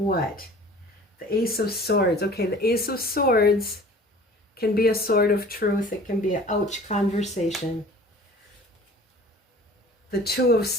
The Ace of Swords. Okay, the Ace of Swords can be a sword of truth. It can be an ouch conversation. The Two of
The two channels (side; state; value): both; normal; correlation 0.46